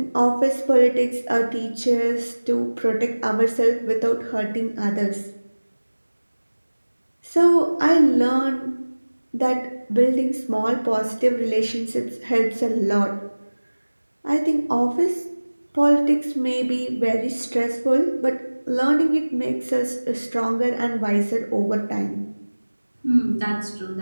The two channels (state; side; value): inverted; both; correlation -1.00